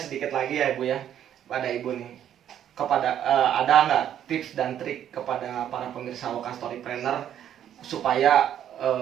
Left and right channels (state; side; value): quieter; left; 10.3 dB